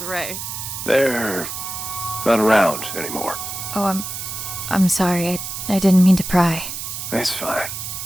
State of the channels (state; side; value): noise; right; hiss, 7 dB below the sound